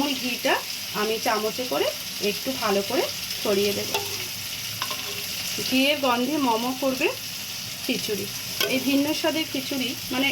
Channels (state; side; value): identical; both; correlation 1.00